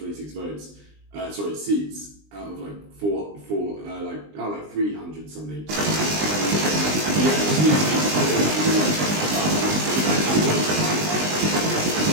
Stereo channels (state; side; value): late; left; 20 ms